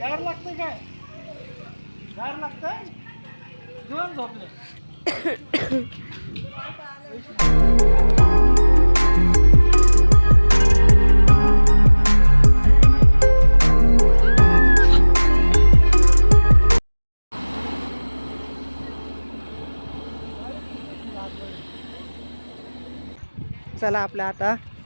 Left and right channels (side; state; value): both; inverted; correlation -1.00